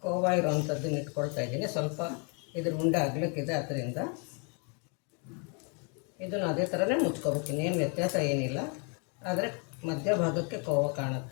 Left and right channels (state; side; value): quieter; right; 36.4 dB